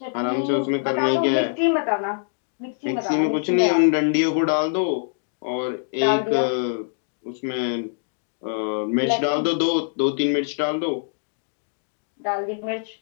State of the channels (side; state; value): right; silent; digital silence